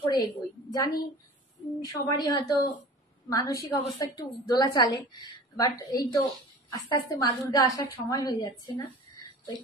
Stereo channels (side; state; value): both; normal; correlation 0.40